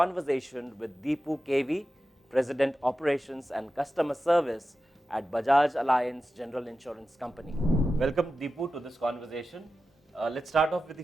with Dipu KV, president operations and customer service at Bajaj Allianz General Insurance Company. Welcome Dipu to this conversation. Let's start off with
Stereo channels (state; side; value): normal; both; correlation 0.92